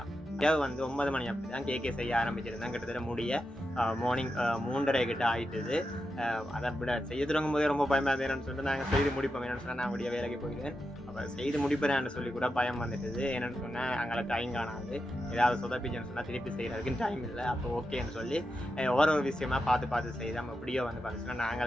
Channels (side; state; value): both; normal; correlation 0.88